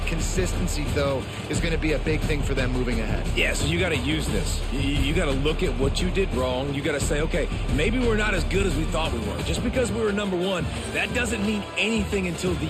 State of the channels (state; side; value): identical; both; correlation 1.00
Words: Consistency, though, is going to be a big thing for them moving ahead. Yeah, so you got to use this. You got to look at what you did wrong. You got to say, okay, maybe we're not as good as we thought we were. Just because we were number one, that doesn't mean anything until